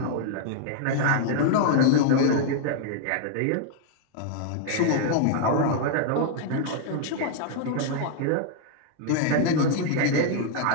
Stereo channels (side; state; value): both; different; correlation 0.00